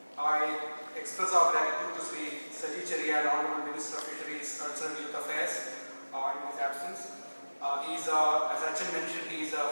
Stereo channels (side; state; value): both; inverted; correlation -1.00